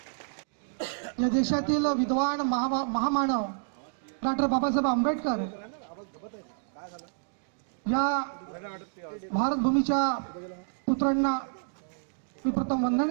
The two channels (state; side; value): silent; left; digital silence